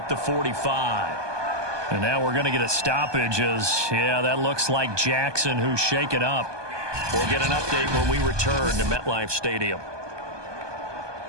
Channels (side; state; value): left; late; 1.2 ms